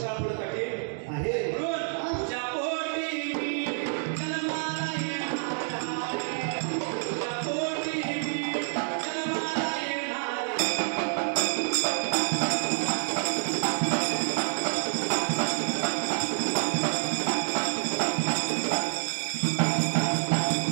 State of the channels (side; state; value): left; silent; digital silence